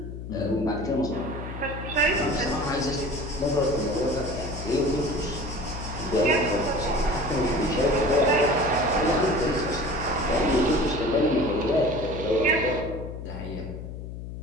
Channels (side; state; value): left; noise; hum, 9 dB below the sound